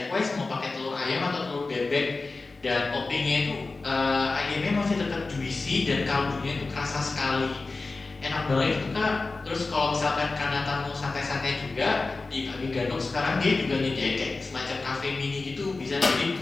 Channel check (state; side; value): quieter; right; 3.7 dB